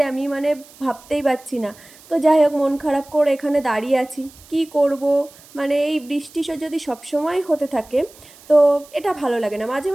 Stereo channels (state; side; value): noise; right; hiss, 24 dB below the sound